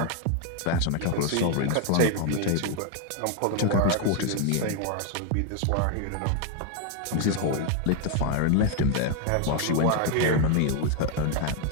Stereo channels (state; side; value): different; both; correlation 0.01